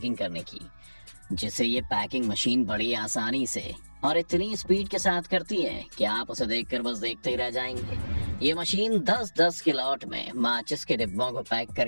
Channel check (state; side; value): inverted; both; correlation -1.00